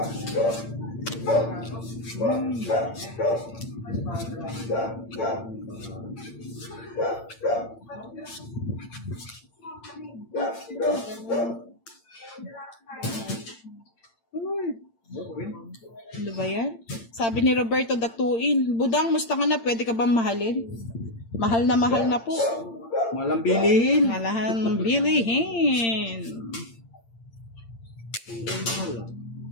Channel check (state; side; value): late; right; 8.8 ms